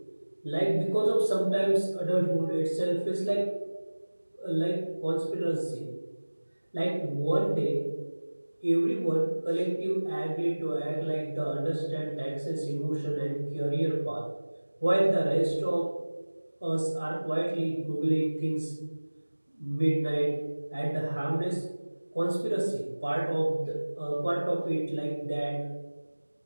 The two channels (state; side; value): inverted; both; correlation -1.00